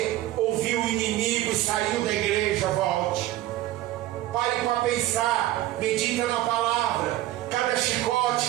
ouviu o inimigo e saiu da igreja, volte. Pare para pensar, medita na palavra. Cada chicote,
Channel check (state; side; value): quieter; left; 14.9 dB